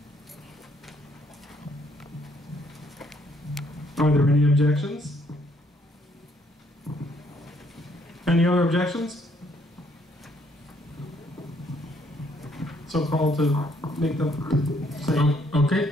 Are there any objections? Any other objections? So call to make them say. Okay,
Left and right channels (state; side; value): normal; both; correlation 0.67